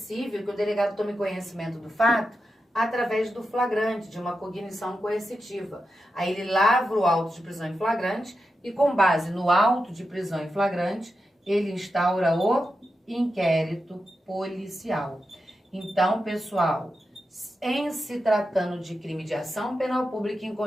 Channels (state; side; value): normal; both; correlation 0.89